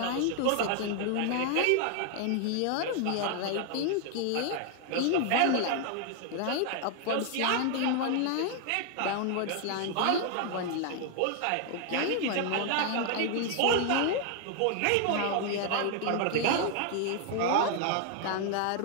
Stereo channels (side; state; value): both; different; correlation 0.00